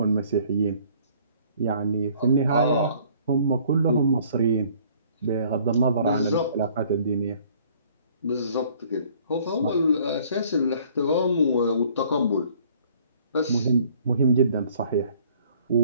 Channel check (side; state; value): both; inverted; correlation -0.58